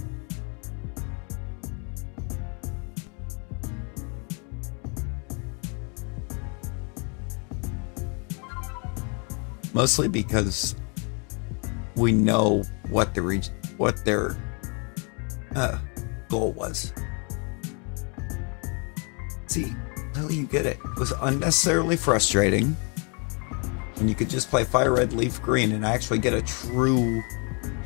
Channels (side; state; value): right; quieter; 35.9 dB